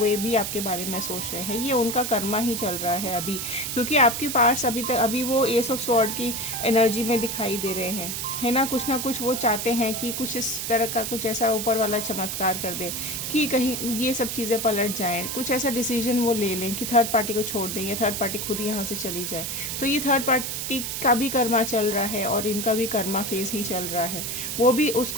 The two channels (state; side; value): noise; right; hiss, 4 dB below the sound